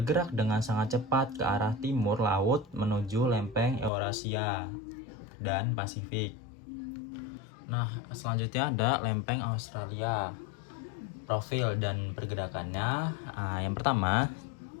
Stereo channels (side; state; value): right; drops out; at 3.9 s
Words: dengan sangat cepat ke arah timur laut menuju lempeng Eurasia dan Pasifik. Nah, selanjutnya ada lempeng Australia. Profil dan pergerakannya, yang pertama,